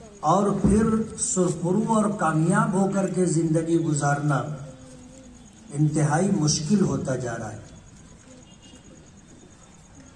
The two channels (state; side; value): identical; both; correlation 1.00